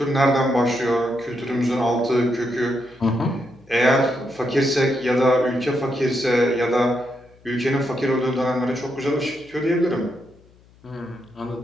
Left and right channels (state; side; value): noise; left; hum, 28 dB below the sound